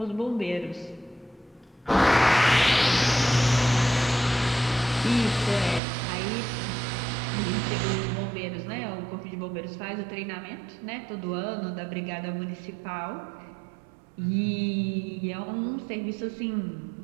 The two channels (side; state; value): left; drops out; at 5.8 s